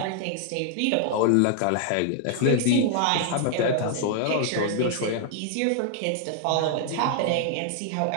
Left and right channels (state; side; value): different; both; correlation 0.00